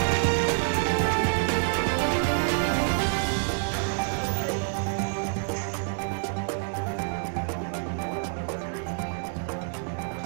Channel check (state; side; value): silent; left; 60 dB below the other